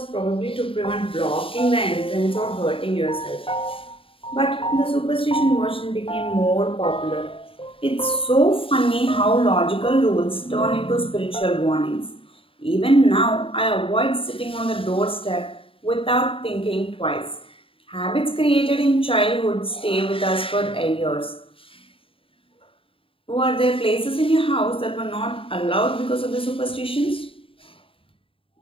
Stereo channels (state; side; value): late; right; 0.26 ms